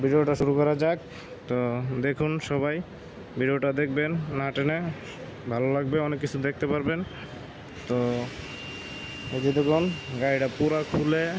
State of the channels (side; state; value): both; identical; correlation 1.00